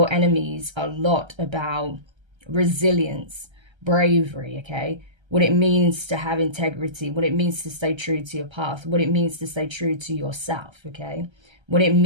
enemies a lot about resilience, bravery, okay, what it means to have integrity, what it means to stay true to your path, what it means to stay true to yourself, okay, what it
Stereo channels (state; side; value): late; left; 1.3 ms